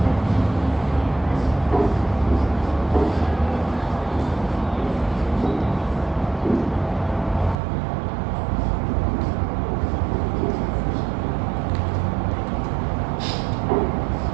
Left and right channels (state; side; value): drops out; left; at 7.6 s